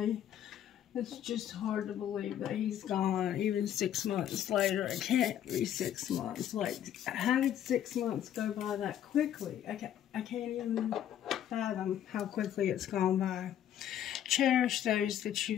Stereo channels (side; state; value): right; quieter; 10.6 dB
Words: It's just hard to believe that he's gone, even 6 months later. It can't be 6 months. Like, how did 6 months go by that quickly? I can't even fathom how quickly it's gone by. Cherish those that